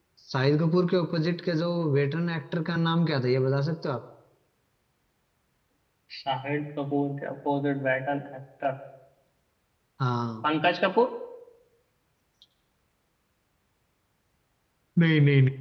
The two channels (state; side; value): identical; both; correlation 1.00